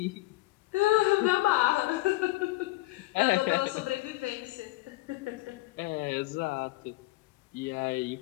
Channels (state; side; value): quieter; right; 19.6 dB